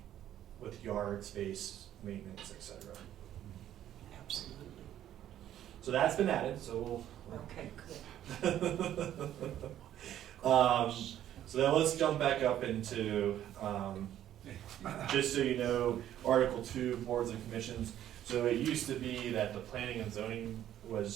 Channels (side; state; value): left; quieter; 11.6 dB